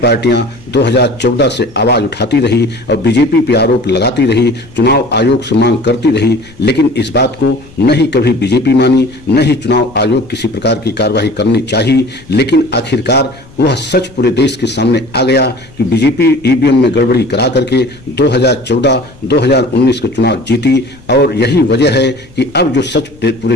2014 से आवाज उठाती रही और बीजेपी पे आरोप लगाती रही, चुनाव आयोग से मांग करती रही, लेकिन इस बात को न ही कभी बीजेपी मानी, न ही चुनाव आयोग किसी प्रकार की कार्रवाई करनी चाहिए। लेकिन आखिरकार वह सच पूरे देश के सामने आ गया कि बीजेपी ईवीएम में गड़बड़ी करा करके 2014-2019 का चुनाव जीती और यही वजह है कि अब जो सच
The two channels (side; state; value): left; noise; rumble, 24 dB below the sound